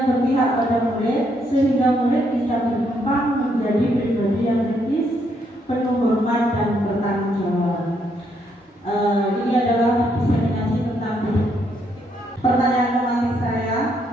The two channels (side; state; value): both; normal; correlation 0.74